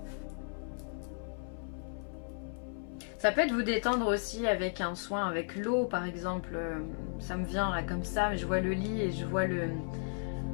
Ça peut être vous détendre aussi avec un soin, avec l'eau par exemple, ça me vient là comme ça, mais je vois le lit et je vois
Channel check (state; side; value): silent; right; 55 dB below the other